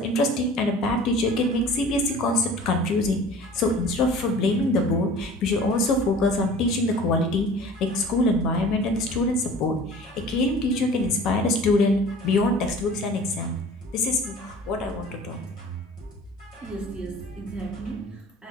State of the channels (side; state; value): both; normal; correlation 0.44